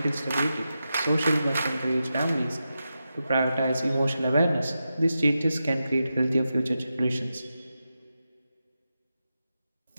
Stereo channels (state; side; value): inverted; both; correlation -0.90